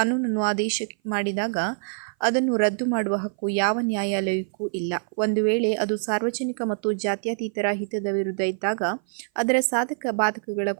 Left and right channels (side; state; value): left; silent; 57 dB below the other